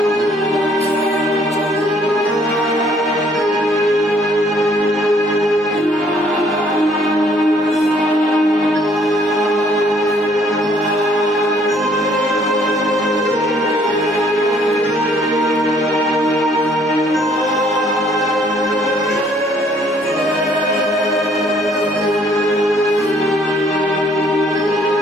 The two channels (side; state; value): both; normal; correlation 0.63